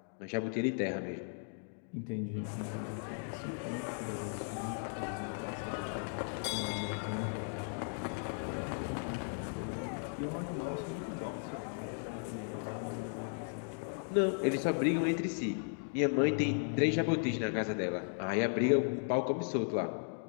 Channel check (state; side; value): silent; right; 54 dB below the other